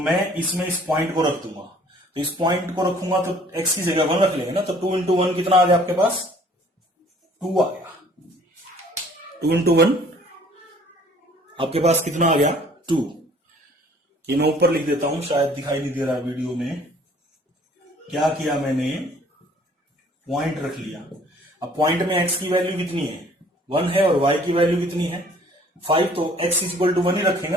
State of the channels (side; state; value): both; normal; correlation 0.56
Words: इसमें इस पॉइंट को रख दूंगा। तो इस पॉइंट को रखूंगा तो x की जगह 1 रख लेंगे ना, तो 2 इंटू 1 कितना आ गया आपके पास, 2 आ गया। 2 इंटू 1 आपके पास कितना आ गया, 2। ये मैं ऊपर लिख देता हूं, शायद दिखाई नहीं दे रहा वीडियो में। क्या किया मैंने, पॉइंट रख लिया। अब पॉइंट में x की वैल्यू कितनी है, 1 है, और y की वैल्यू कितनी है, 5। तो x इज इक्वल टू 1 ही रखेंगे